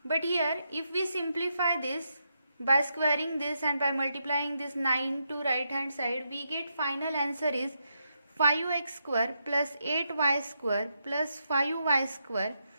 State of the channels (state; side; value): inverted; both; correlation -0.82